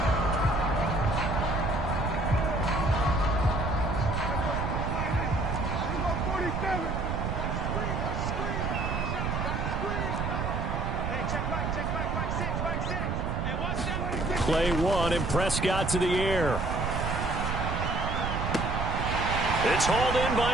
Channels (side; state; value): right; noise; rumble, 1 dB below the sound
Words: Play one, and Prescott to the air. It's hauled in